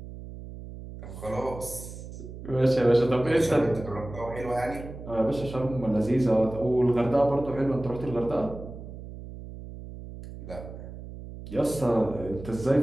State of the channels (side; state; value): right; noise; hum, 12 dB below the sound